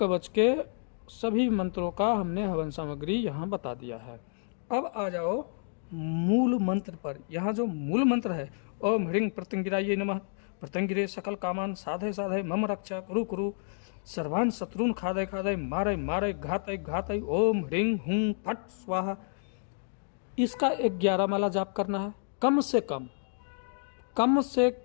के, सभी मंत्रों का हमने हवन सामग्री यहाँ बता दिया है। अब आ जाओ मूल मंत्र पर। यहाँ जो मूल मंत्र है ओम ह्रीं प्रत्यंगिराय नमः, प्रत्यंगिरे सकल कामान साधय साधय मम रक्षा कुरु कुरु सर्वान् शत्रुन खादय खादय मारय मारय घातय घातय ओम ह्रीं हुं फट स्वाहा। इसका 11 माला जाप करना है, कम से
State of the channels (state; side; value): silent; right; digital silence